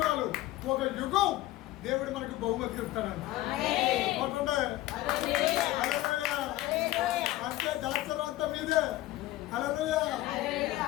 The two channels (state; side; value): quieter; right; 16.4 dB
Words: ఒక యుగం దేవుడు మనకు బహుమతి ఇస్తాడండి. అంటే దాసరం అంతా మీదే. హల్లెలూయా.